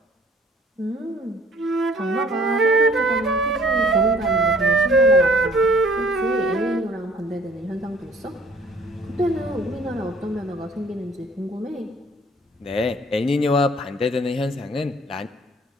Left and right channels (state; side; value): normal; both; correlation 0.56